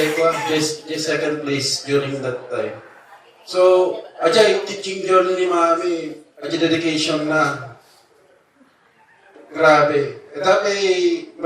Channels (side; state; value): both; identical; correlation 1.00